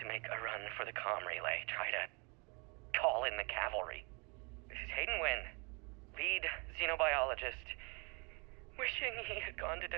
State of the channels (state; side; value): quieter; left; 32.3 dB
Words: make a run for the comm relay. Try to call in the cavalry. This is Hayden Wynn, lead xenobiologist. Wishing he had gone to